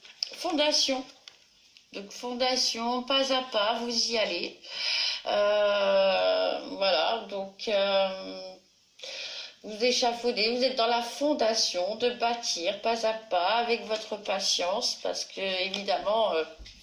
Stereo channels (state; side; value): identical; both; correlation 1.00